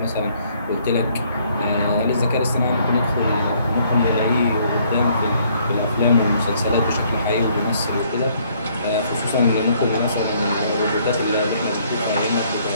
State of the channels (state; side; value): inverted; both; correlation -0.65